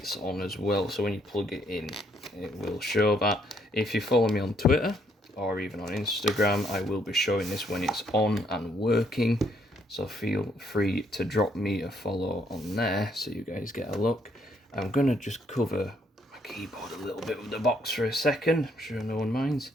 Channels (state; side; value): normal; both; correlation 0.70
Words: on as well, so when you plug it in, it will show that. If you follow me on Twitter or even on Instagram, I will be showing this when it's on and working. So feel free to drop me a follow on there so you guys get a look. I'm going to just cover my keyboard a little bit with the box for a second. I'm sure no one minds.